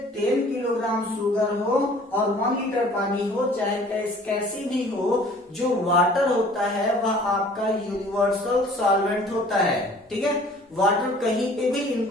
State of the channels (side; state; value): both; normal; correlation 0.51